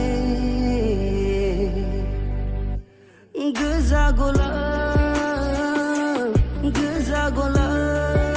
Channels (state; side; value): identical; both; correlation 1.00